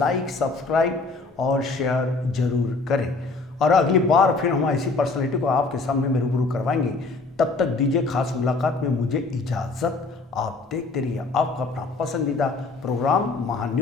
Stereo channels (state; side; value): quieter; right; 3.7 dB